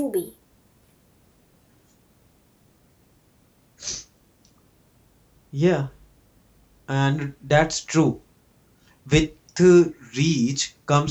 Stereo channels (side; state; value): both; identical; correlation 1.00